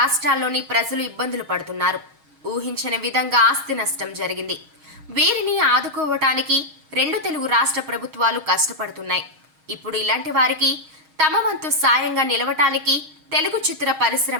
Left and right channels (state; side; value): late; left; 6.4 ms